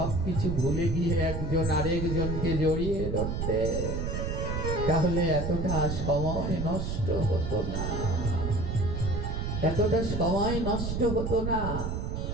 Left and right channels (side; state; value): right; noise; rumble, 2 dB below the sound